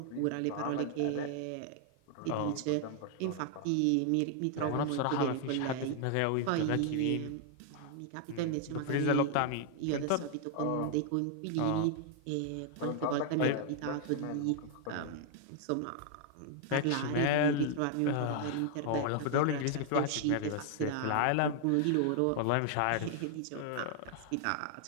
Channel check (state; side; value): different; both; correlation 0.00